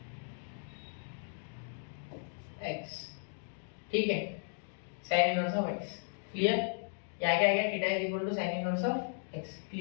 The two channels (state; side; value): silent; right; digital silence